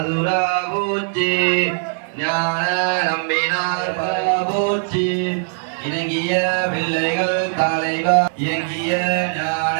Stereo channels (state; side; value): silent; left; 63 dB below the other